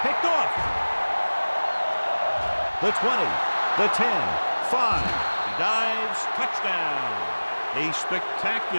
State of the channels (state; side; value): inverted; both; correlation -1.00